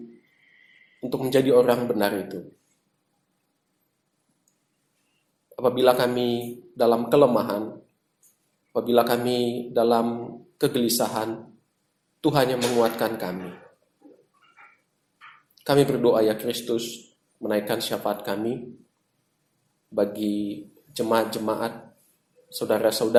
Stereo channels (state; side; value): identical; both; correlation 1.00